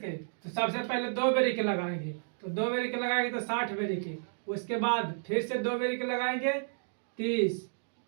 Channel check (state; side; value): silent; left; digital silence